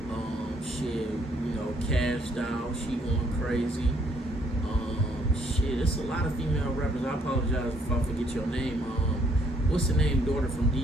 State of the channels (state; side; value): normal; both; correlation 0.68